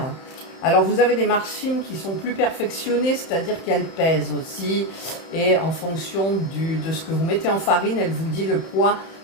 Alors, vous avez des machines qui sont plus perfectionnées, c'est-à-dire qu'elles pèsent aussi. Et en fonction de ce que vous mettez en farine, elle vous dit le poids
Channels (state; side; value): late; right; 31 ms